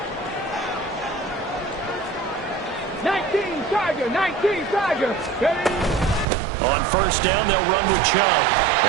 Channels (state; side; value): drops out; left; at 6.2 s